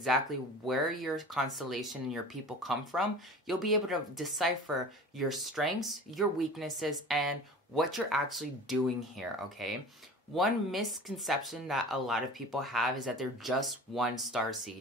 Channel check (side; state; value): both; normal; correlation 0.39